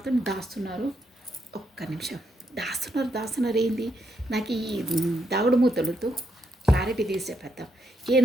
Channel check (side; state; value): both; normal; correlation 0.79